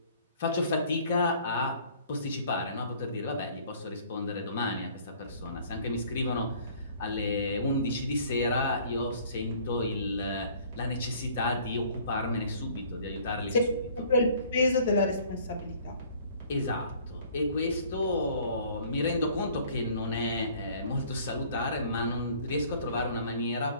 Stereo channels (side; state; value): both; inverted; correlation -0.54